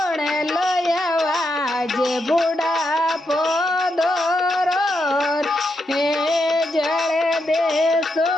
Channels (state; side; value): normal; both; correlation 0.83